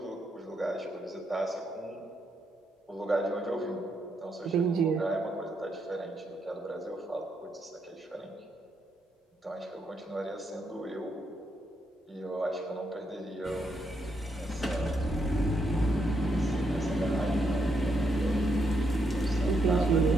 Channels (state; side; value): normal; both; correlation 0.78